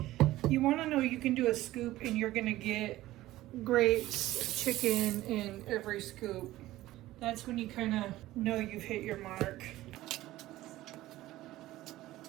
You want to know you can do a scoop and you're going to get grapes, chicken in every scoop. That's when you kind of know you've hit your mark.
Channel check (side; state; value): left; quieter; 16.1 dB